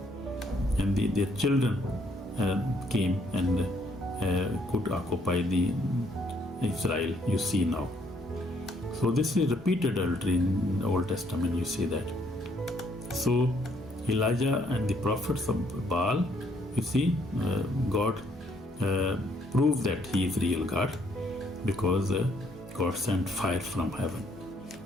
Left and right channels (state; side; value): normal; both; correlation 0.68